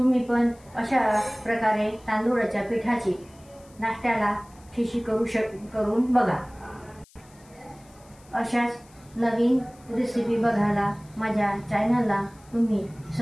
पण अशा प्रकारे तांदूळाच्या पिठाची नाश्त्याला खिशी करून बघा. अशाच नवीन रेसिपी बघायला माझ्या चॅनलला तुम्ही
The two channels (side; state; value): left; noise; hiss, 28 dB below the sound